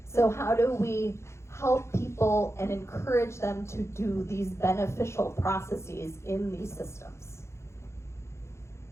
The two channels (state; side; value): late; right; 0.13 ms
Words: So how do we help people and encourage them to do these beneficial processes in these systems?